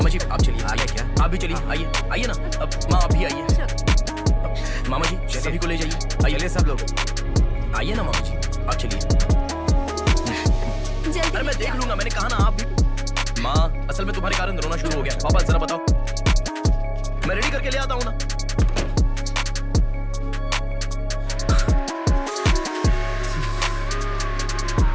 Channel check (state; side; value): identical; both; correlation 1.00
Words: जी आप चलिए। आगे क्या? आप भी चलिए, आइए आइए ना। माँ आप भी आइए। मामा जी सभी को ले जाइए। आइए सब लोग आइए ना मामा जी, आप चलिए। अरे मैं देख लूंगा, मैंने कहा ना आप भी। माँ असल में तुम्हारे कारण रोना शुरू हो गया। पापा जरा बताओ, मैं रेडी करके ले आता हूँ ना।